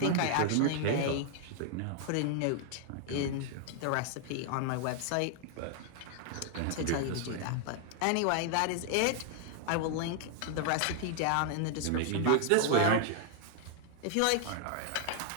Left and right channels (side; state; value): both; different; correlation 0.00